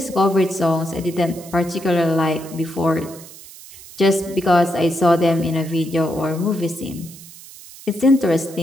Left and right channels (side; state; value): right; noise; hiss, 18 dB below the sound